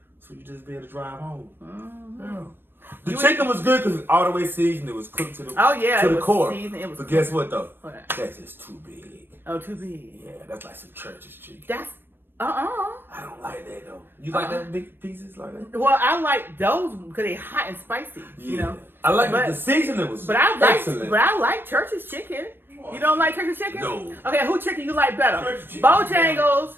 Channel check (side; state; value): left; late; 0.098 ms